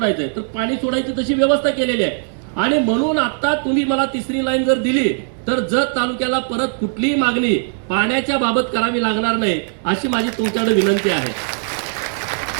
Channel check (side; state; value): left; silent; 67 dB below the other